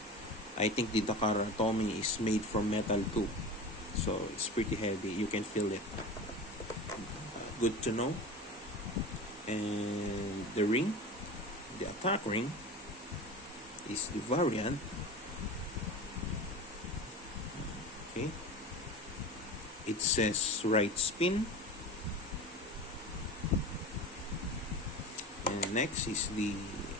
I think the Takara Tommy is made from metal too, so it's pretty heavy. You can feel it. Good to know. And the ring, the attack ring, is the variant. Okay. It says right spin. And next is the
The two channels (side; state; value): both; normal; correlation 0.30